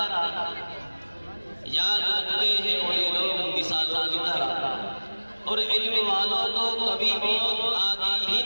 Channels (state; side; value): inverted; both; correlation -1.00